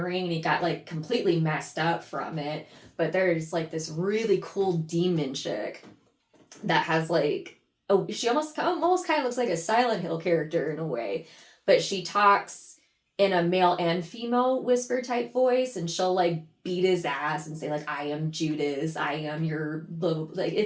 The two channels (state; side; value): identical; both; correlation 1.00